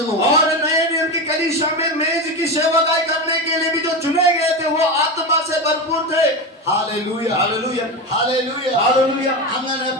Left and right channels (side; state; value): both; normal; correlation 0.19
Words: और नए नियम की कलीसिया में मेज की सेवकाई करने के लिए भी जो चुने गए थे वो आत्मा से भरपूर थे. ഹല്ലേലൂയ. हालेलुया. ഹല്ലേലൂയ. हालेलुया. അങ്ങനെ